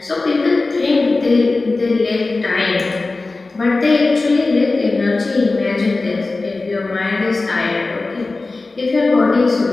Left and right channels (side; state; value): right; quieter; 3.5 dB